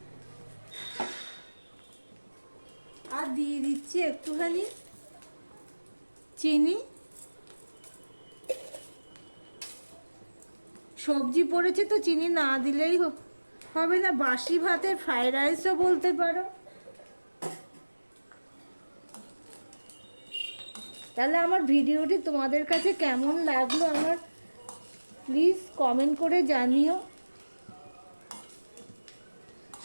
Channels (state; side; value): inverted; both; correlation -1.00